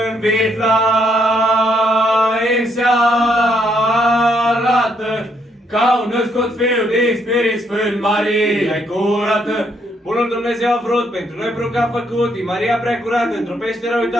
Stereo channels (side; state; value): both; normal; correlation 0.73